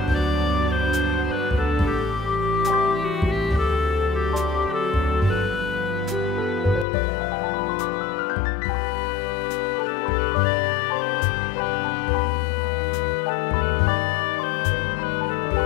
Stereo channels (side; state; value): right; drops out; at 6.9 s